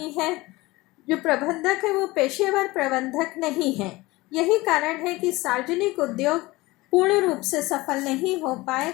है। जो प्रबंधक है वो पेशेवर प्रबंधक नहीं है। यही कारण है कि सार्वजनिक उद्योग पूर्ण रूप से सफल नहीं हो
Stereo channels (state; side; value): quieter; right; 20.7 dB